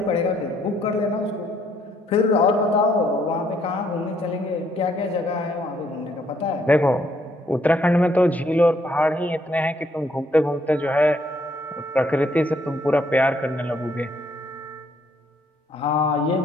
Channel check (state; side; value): normal; both; correlation 0.69